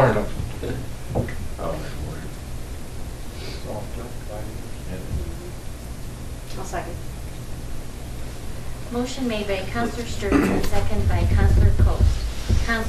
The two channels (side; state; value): both; identical; correlation 1.00